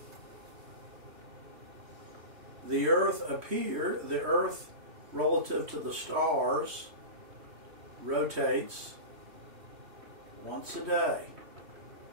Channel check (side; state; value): left; late; 3.1 ms